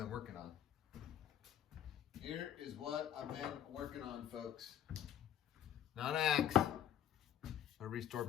working on. Here is what I've been working on, folks. Not an axe. I restored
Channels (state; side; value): quieter; right; 10.5 dB